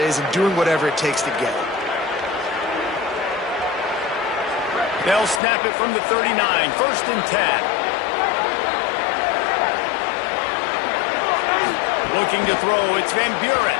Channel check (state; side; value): drops out; right; at 5.4 s